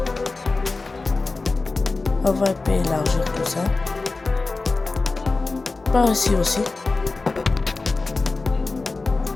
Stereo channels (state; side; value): quieter; right; 3.7 dB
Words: On va un peu élargir tout ça. Par ici aussi.